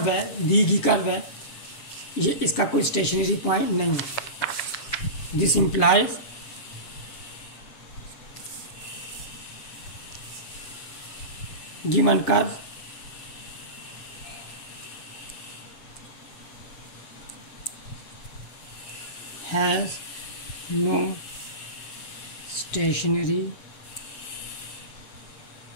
है, दी गई कर्व है, ये इसका कोई स्टेशनरी पॉइंट नहीं है। This implies given curve has no stationary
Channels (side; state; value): right; late; 7.5 ms